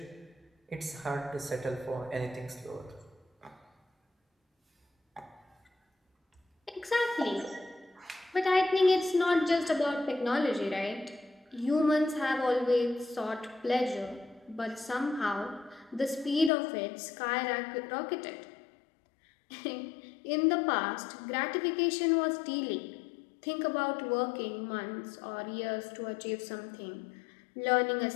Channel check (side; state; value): right; drops out; at 16.5 s